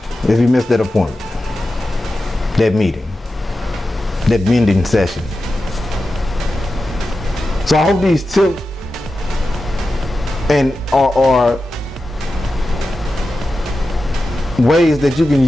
if you miss that appointment, that meeting, that mending session. So I hope these tips are ways that you can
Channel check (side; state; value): both; normal; correlation 0.92